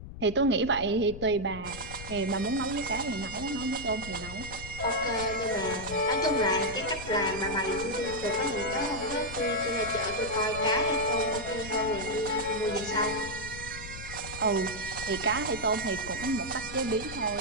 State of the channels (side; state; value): left; noise; rumble, 12 dB below the sound